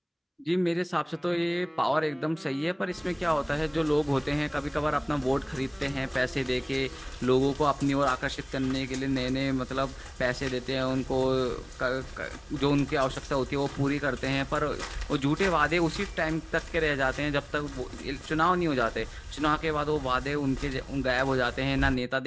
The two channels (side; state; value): both; identical; correlation 1.00